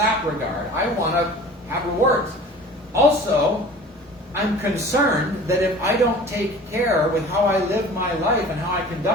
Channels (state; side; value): normal; both; correlation 0.43